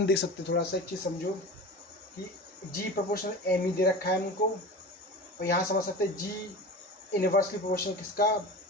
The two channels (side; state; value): both; normal; correlation 0.32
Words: देख सकते हैं, थोड़ा सा एक चीज़ समझो कि g प्रोपोर्शनल m दे रखा है हमको, और यहाँ समझ सकते हैं g इनवर्सली प्रोपोर्शनल किसका,